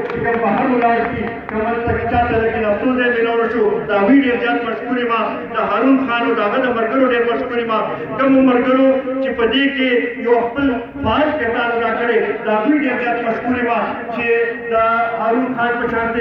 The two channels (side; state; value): both; identical; correlation 1.00